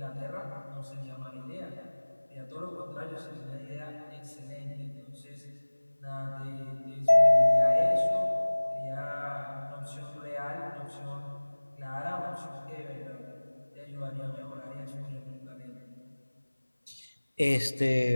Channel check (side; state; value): both; inverted; correlation -1.00